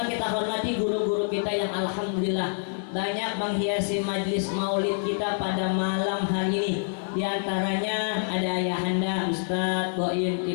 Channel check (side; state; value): right; silent; 60 dB below the other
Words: kita hormati guru-guru kita yang alhamdulillah banyak menghiasi majlis maulid kita pada malam hari ini. Di antaranya ada Ayahanda Ustadz Boim